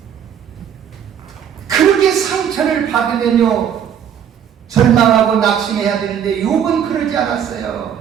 그렇게 상처를 받으면요 절망하고 낙심해야 되는데 욥은 그러지 않았어요.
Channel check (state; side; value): quieter; left; 8.9 dB